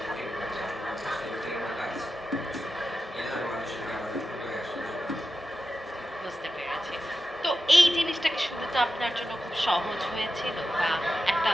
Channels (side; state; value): both; normal; correlation 0.91